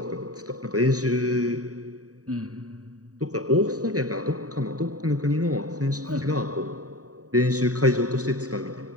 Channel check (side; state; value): left; late; 0.66 ms